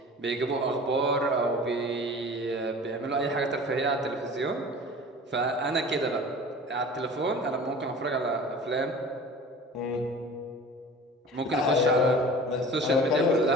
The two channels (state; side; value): normal; both; correlation 0.41